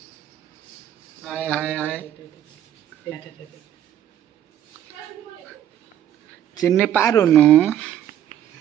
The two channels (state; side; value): quieter; left; 11.0 dB